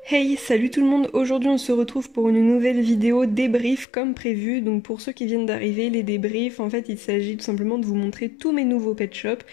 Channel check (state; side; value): drops out; right; at 3.9 s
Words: Hey, salut tout le monde, aujourd'hui on se retrouve pour une nouvelle vidéo débrief comme prévu. Donc pour ceux qui viennent d'arriver, les débriefs, en fait il s'agit tout simplement de vous montrer tous mes nouveaux pet shops